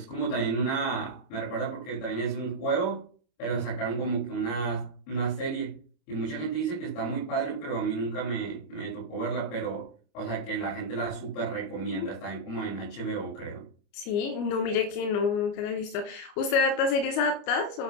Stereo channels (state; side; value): late; right; 29 ms